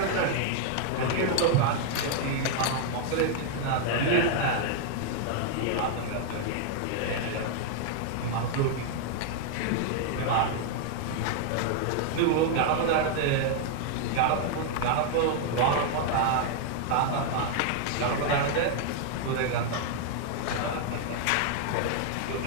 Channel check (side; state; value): both; different; correlation 0.00